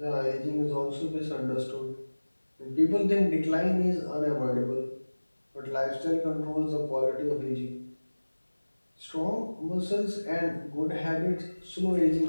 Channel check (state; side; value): inverted; both; correlation -1.00